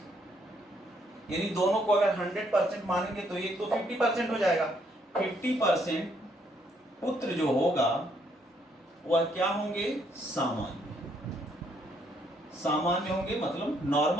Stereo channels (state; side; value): normal; both; correlation 0.70